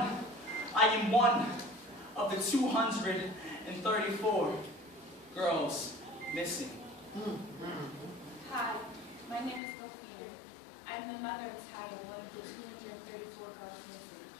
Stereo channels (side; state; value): right; drops out; at 9.6 s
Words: one of the 234 girls missing. Hi, my name is Sophia. I'm the mother of Taya, one of the 234 girls